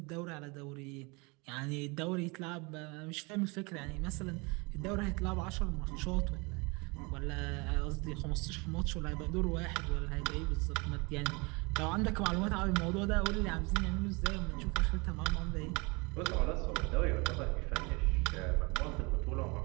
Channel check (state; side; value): quieter; left; 28.1 dB